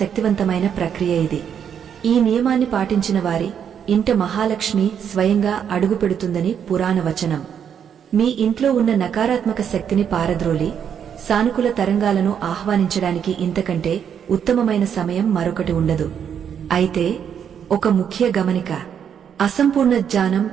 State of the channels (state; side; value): quieter; left; 8.2 dB